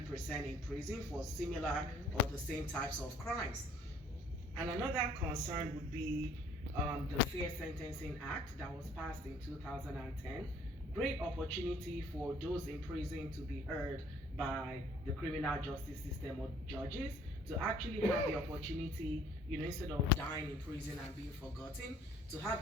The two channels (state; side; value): normal; both; correlation 0.58